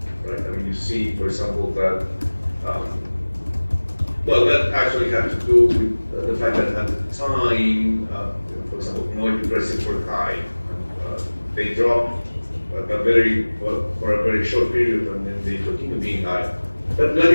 right? I mean, you see, for example, that that actually had to do with the fact that at the time, for example, commodity prices were high. They dropped for a very short period, and then they continue being high. But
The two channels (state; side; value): inverted; both; correlation -1.00